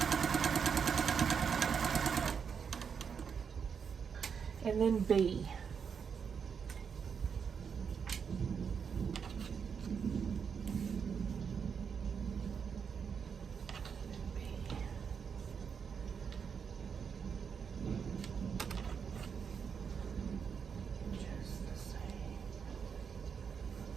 And then B.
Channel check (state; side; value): quieter; left; 6.6 dB